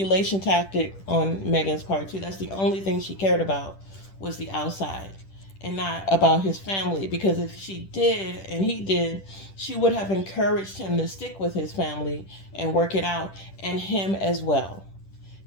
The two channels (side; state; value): right; late; 10 ms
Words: tactic on Meghan's part too. That's the only thing she cared about was the outside and not about his family. Because if she did and he did, she would have encouraged him to stick with his family and work it out, and him as well.